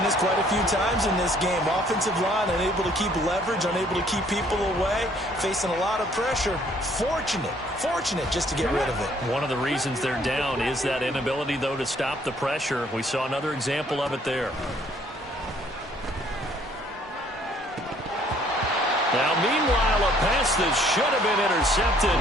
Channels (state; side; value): normal; both; correlation 0.62